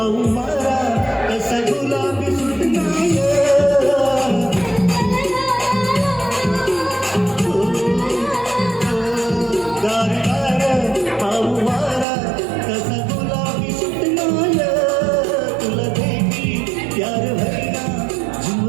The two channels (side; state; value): left; drops out; at 12.1 s